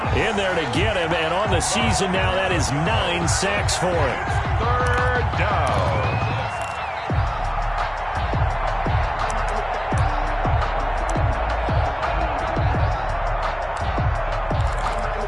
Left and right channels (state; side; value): identical; both; correlation 1.00